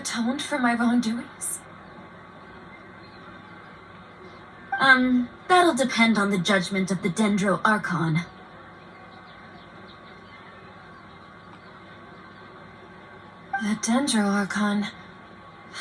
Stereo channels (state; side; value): identical; both; correlation 1.00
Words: for my wrongdoings? That'll depend on the judgment of the Dendro Archon. The Dendro Archon.